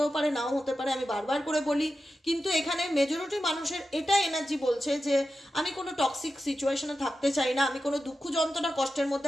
পারে, নাও হতে পারে, আমি বারবার করে বলি। কিন্তু এখানে মেজরিটি মানুষের এটা এনার্জি বলছে যে আমি কোনো টক্সিক সিচুয়েশনে থাকতে চাই না, আমি কোনো দুঃখ যন্ত্রণা কষ্টের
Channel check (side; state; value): both; normal; correlation 0.91